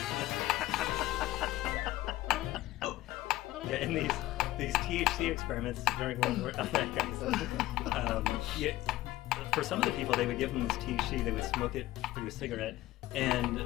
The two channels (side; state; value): right; quieter; 16.5 dB